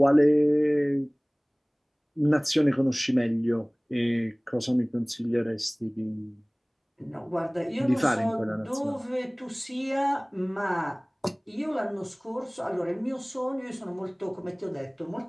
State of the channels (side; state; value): both; identical; correlation 1.00